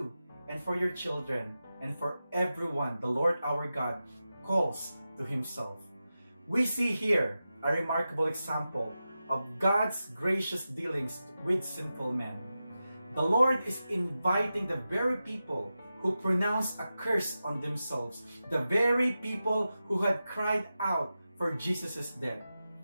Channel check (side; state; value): both; inverted; correlation -0.92